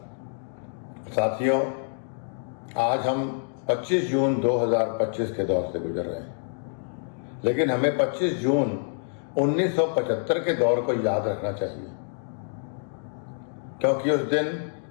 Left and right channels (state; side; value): silent; right; digital silence